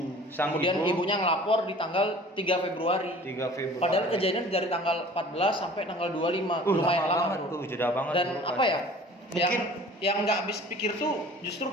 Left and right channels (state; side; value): normal; both; correlation 0.46